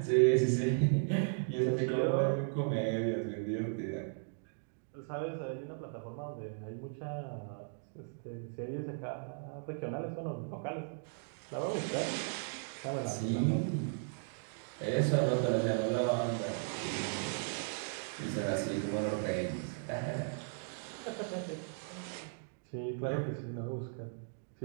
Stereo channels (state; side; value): silent; left; digital silence